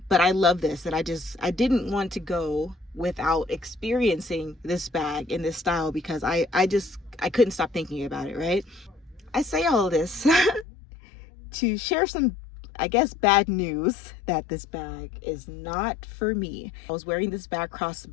I love this, and I didn't want to go without experiencing this bag in this style because I couldn't stop thinking about it, right? I say all of this to share some, I guess, bad news that this bag is not for me. I was wearing this bag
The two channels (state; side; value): drops out; right; at 10.7 s